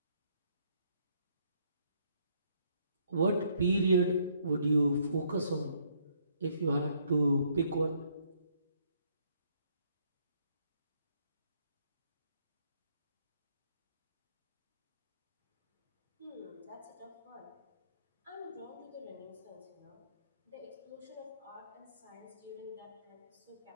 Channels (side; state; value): both; inverted; correlation -0.68